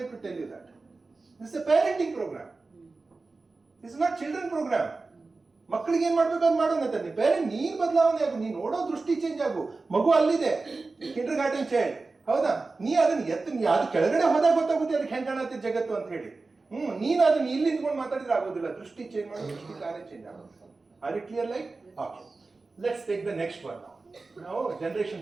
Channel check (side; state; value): left; quieter; 3.7 dB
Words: to tell you that. This is a parenting program, this is not children program. ಮಕ್ಕಳಿಗೆ ಏನ್ ಮಾಡ್ಬೇಕು ಅಂತ ಮಾಡೋಣ. ಪೇರೆಂಟ್ ನೀನ್ ಬದಲಾವಣೆ ಆಗು, ನೀನ್ ನೋಡೋ ದೃಷ್ಟಿ ಚೇಂಜ್ ಆಗು. ಮಗು ಅಲ್ಲಿದೆ, ಕಿಂಡರ್ ಗಾರ್ಡನ್ ಚೈಲ್ಡ್, ಹೌದಾ? ನೀ ಅದನ್ನ ಅದು ಕೆಳಗಡೆ ಹೋದಾಗ ಗೊತ್ತಾಗುತ್ತೆ ಅದಕ್ಕೆ ಹೆಂಗ್ ಕಾಣತ್ತೆ ಜಗತ್ತು ಅಂತ ಹೇಳಿ. ನೀನು ಅದನ್ನ ಇಲ್ಲಿ ನಿಂತ್ಕೊಂಡು ಮಾತಾಡಿದ್ರೆ ಆಗೋದಿಲ್ಲ. ದೃಷ್ಟಿ ಚೇಂಜ್ ಮಾಡೋ ದೃಷ್ಟಿ ಕಾರ್ಯ ಚೇಂಜ್ ಆಗೋದು. Are it clear like? Okay, let's take the next one. ನಾವು ಜನರೇಷನ್